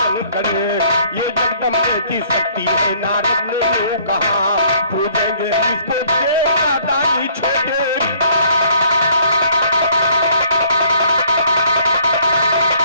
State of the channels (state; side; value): inverted; both; correlation -0.60